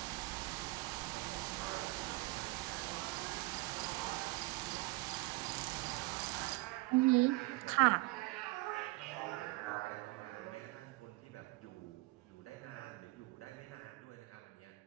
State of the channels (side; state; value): left; quieter; 23.0 dB